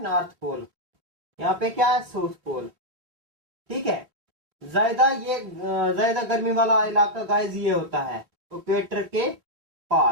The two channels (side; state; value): left; late; 2.9 ms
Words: नॉर्थ पोल, यहाँ पे क्या है, साउथ पोल। ठीक है, ज्यादा गर्मी वाला इलाका गाइस ये होता है इक्वेटर के